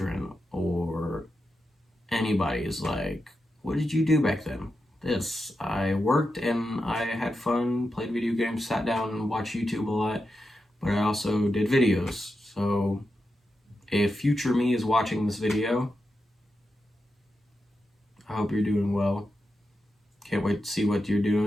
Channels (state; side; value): normal; both; correlation 0.88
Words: or anybody is like, what did you do back then? This. I worked and I had fun, played video games, sat down and watched YouTube a lot, but I also did videos. So if future me is watching this video, I hope you're doing well. Can't wait to see what you're